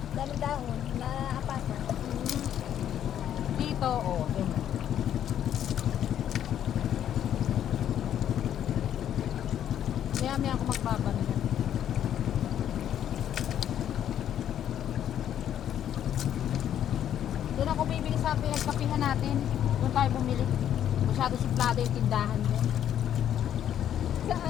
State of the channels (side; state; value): right; quieter; 10.3 dB